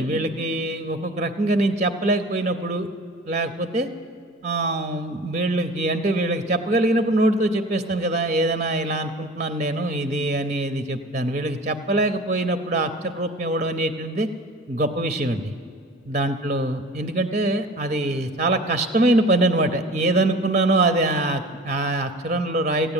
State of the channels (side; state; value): both; normal; correlation 0.40